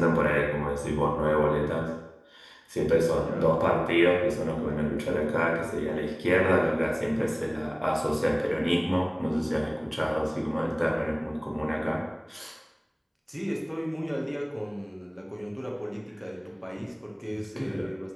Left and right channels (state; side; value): identical; both; correlation 1.00